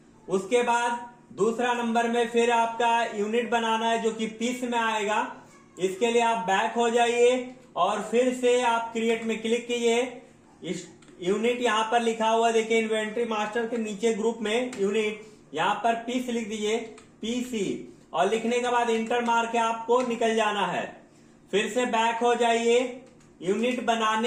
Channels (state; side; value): identical; both; correlation 1.00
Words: उसके बाद दूसरा नंबर में फिर आपका यूनिट बनाना है जो कि पीस में आएगा। इसके लिए आप बैक हो जाइए और फिर से आप क्रिएट में क्लिक कीजिए। यूनिट यहाँ पर लिखा हुआ देखिए, इन्वेंट्री मास्टर के नीचे ग्रुप में यूनिट, यहाँ पर पीस लिख दीजिए, PC, और लिखने के बाद इंटर मार के आपको निकल जाना है। फिर से बैक हो जाइए। यूनिट